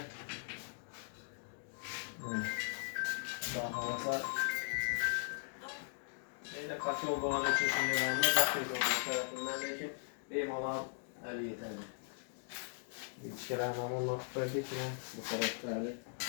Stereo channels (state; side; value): silent; right; digital silence